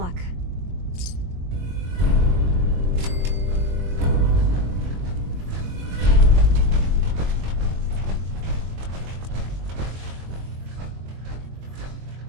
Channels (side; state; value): left; late; 22 ms